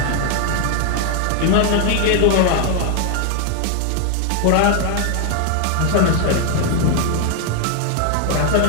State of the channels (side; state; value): both; different; correlation 0.01